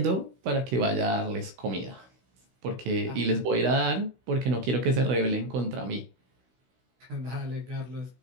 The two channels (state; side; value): late; left; 16 ms